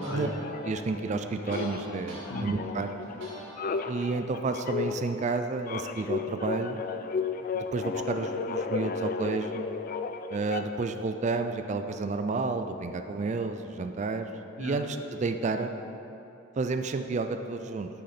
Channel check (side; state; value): both; normal; correlation 0.34